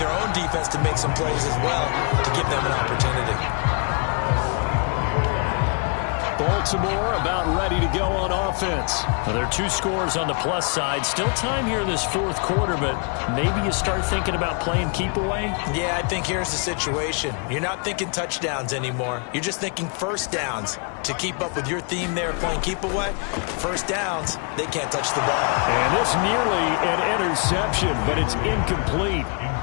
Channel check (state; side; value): quieter; right; 38.2 dB